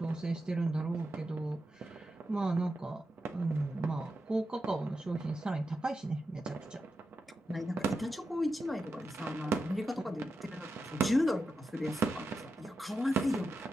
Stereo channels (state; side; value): normal; both; correlation 0.89